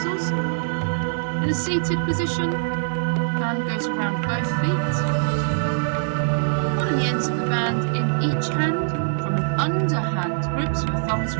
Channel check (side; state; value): left; silent; digital silence